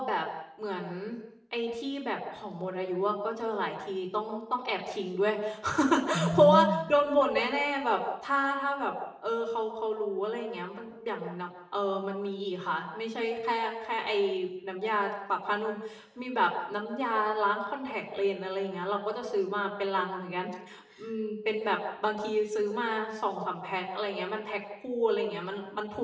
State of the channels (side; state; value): both; identical; correlation 1.00